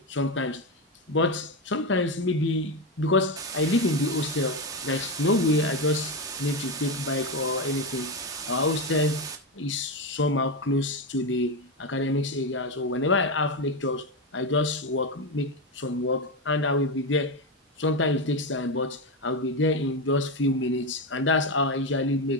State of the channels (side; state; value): both; normal; correlation 0.12